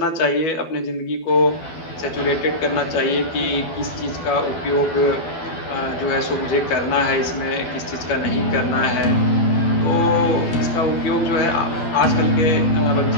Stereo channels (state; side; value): late; right; 12 ms